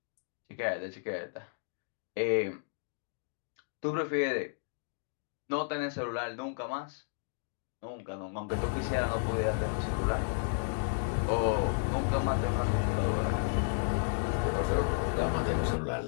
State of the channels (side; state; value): right; silent; digital silence